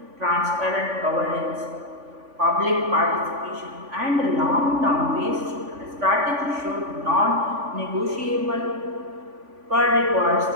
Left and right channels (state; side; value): late; left; 3.5 ms